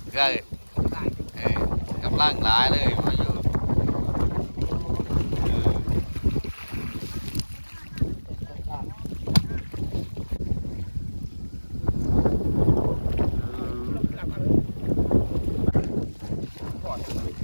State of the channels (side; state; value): both; inverted; correlation -1.00